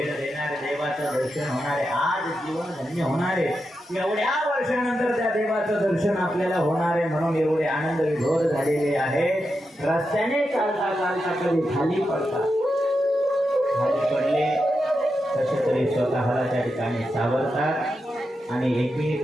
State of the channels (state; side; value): normal; both; correlation 0.87